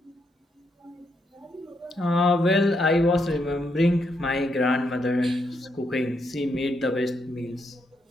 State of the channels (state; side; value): normal; both; correlation 0.78